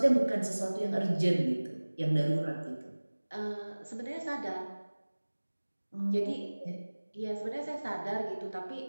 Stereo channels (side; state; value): both; inverted; correlation -1.00